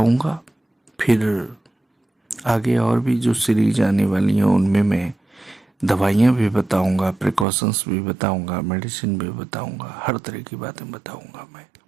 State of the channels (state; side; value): drops out; left; at 7.5 s